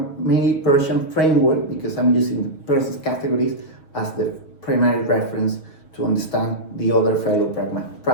Peircean framework because I'm using Peirce's categories as the primary reference to understand the other fellow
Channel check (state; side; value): late; right; 6.3 ms